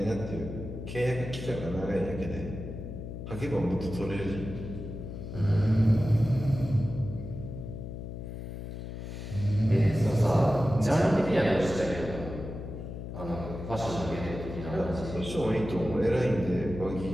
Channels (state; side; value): noise; left; hum, 8 dB below the sound